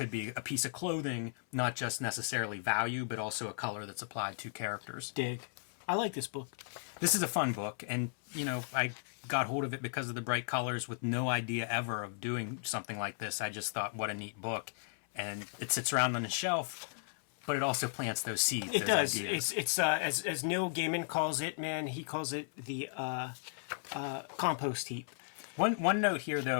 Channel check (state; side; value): silent; right; 54 dB below the other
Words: be a piece of clothing, not just necessarily value, but also a color that's applied to characters. Dig. I like this book. This is a fun book, and, you know, I got hold of it because of the bright colors with no idea ever of doing something like this. I just thought, what a neat book. And it sits around on the shelf, but it also plants those seeds. It does. Ideas. It's as Neil Gaiman calls it, man, he calls it the compost heap. One note here,